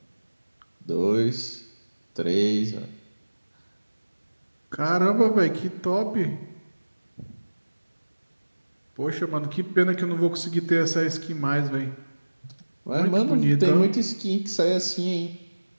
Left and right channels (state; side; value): inverted; both; correlation -1.00